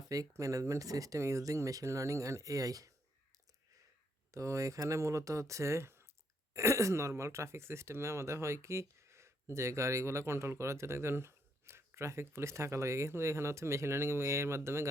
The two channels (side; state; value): both; normal; correlation 0.75